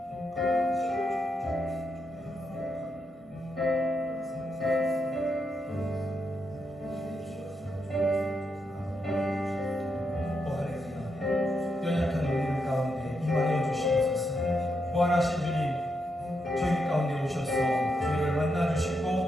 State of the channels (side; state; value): both; normal; correlation 0.82